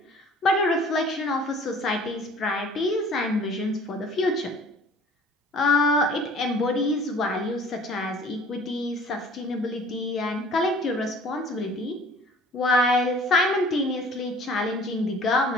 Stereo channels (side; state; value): both; normal; correlation 0.49